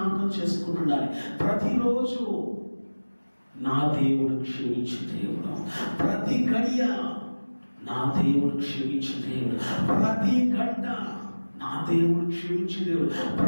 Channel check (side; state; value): both; inverted; correlation -1.00